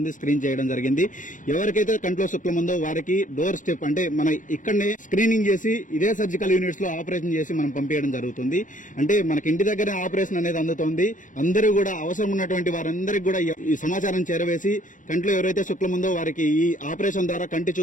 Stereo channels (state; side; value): late; right; 0.37 ms